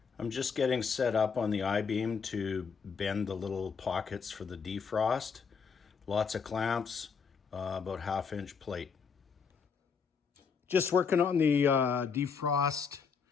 I'm just getting set up on the I-beam to bend the little pockets for the defrost. Lots of clamps, about 1/2 inch plate. Just working on the defrost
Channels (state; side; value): quieter; right; 5.9 dB